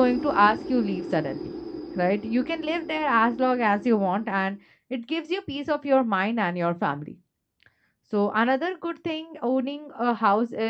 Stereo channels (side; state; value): both; identical; correlation 1.00